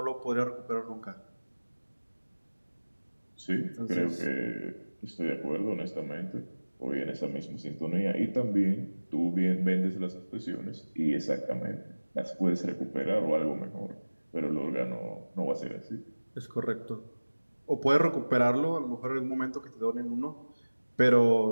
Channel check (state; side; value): inverted; both; correlation -1.00